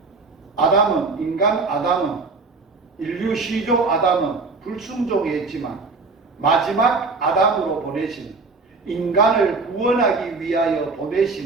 아담은, 인간 아담은, 인류 시조 아담은 불순종했지만 마지막 아담으로 보내신, 인간을 구원하기 위하여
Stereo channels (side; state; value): left; quieter; 4.0 dB